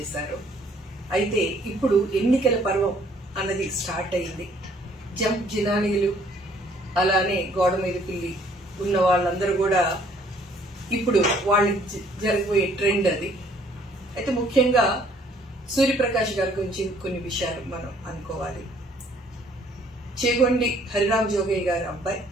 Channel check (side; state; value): both; normal; correlation 0.61